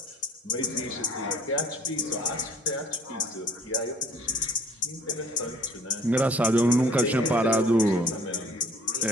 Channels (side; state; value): both; normal; correlation 0.55